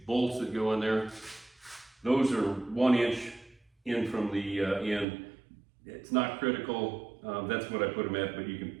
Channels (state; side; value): drops out; left; at 5.1 s